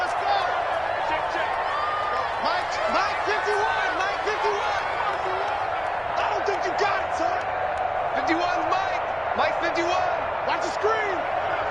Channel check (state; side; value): identical; both; correlation 1.00